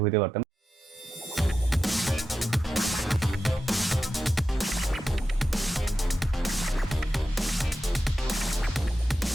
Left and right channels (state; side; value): normal; both; correlation 0.90